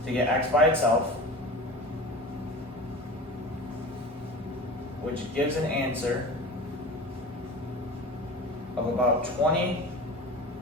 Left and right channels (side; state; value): both; normal; correlation 0.34